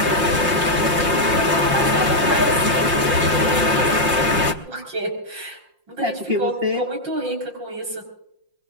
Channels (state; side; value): late; left; 5.6 ms